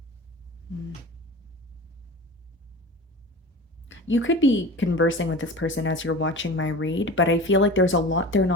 Mm. You could be conversing with this person as you're watching my read, but I feel like there's a lot they're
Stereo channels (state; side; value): normal; both; correlation 0.35